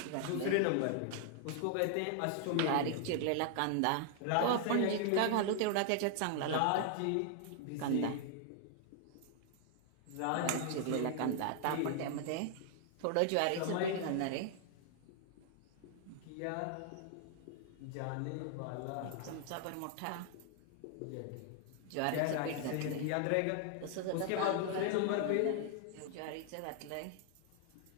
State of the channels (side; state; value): both; different; correlation 0.00